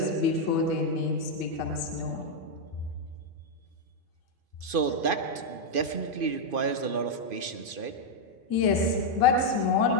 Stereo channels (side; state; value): left; late; 2.5 ms